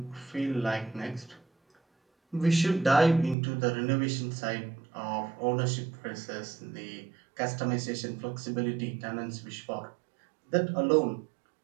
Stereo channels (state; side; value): drops out; left; at 3.4 s